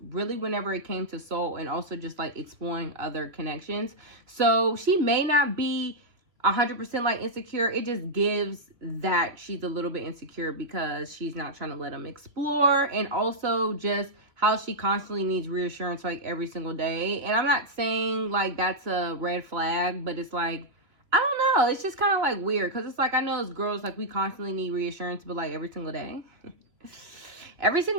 really whenever it came to Soul and also just like exploring other connections. So she may not be 100% like insecure. It just gives that she's a little bit insecure because she's not trying to let them explore, and also just how she constantly needs reassurance like every single day. And I'm not saying like that's a red flag, but it's like, I don't know, it's just kind of like weird because it's like, I know as girls, like we constantly need reassurance, but like every single day every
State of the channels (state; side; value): late; left; 3.0 ms